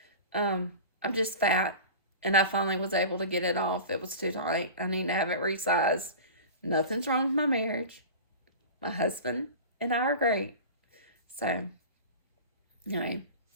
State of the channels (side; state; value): both; inverted; correlation -0.34